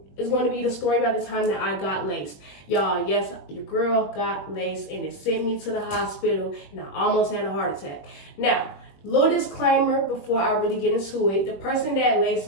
is going to be the story about the time that I got laced. Y'all, yes, your girl got laced and it sent me to the hospital and I almost had a heart attack. Now, little disclaimer before I really get into it. The person that laced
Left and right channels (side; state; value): right; late; 21 ms